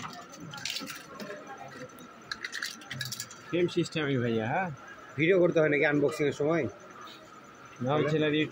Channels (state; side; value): identical; both; correlation 1.00